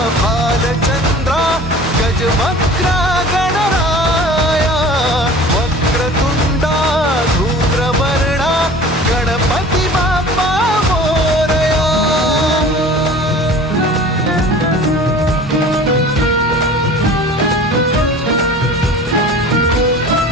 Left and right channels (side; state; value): both; normal; correlation 0.42